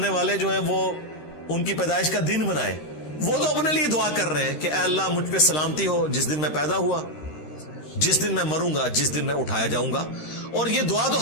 والے جو ہیں وہ ان کی پیدائش کا دن منائے؟ وہ تو اپنے لیے دعا کر رہے ہیں کہ اے اللہ مجھ پہ سلامتی ہو جس دن میں پیدا ہوا، جس دن میں مروں گا، جس دن میں اٹھایا جاؤں گا. اور یہ دعا تو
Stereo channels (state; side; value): late; right; 13 ms